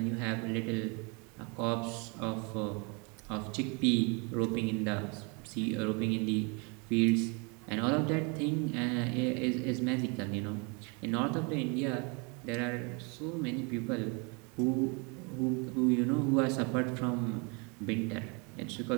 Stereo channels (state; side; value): quieter; left; 32.0 dB